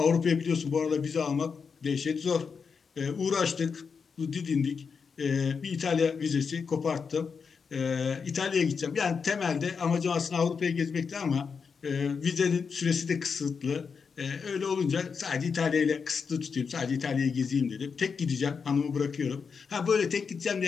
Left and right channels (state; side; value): quieter; right; 5.7 dB